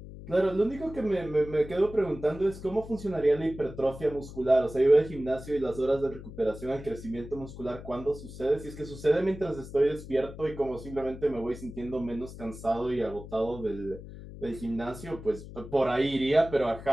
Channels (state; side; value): noise; left; hum, 13 dB below the sound